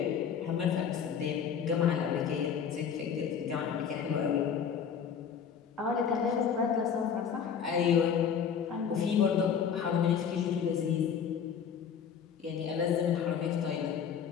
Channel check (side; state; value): right; quieter; 7.5 dB